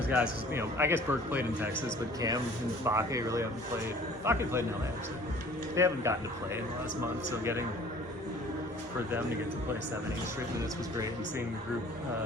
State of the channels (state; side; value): normal; both; correlation 0.50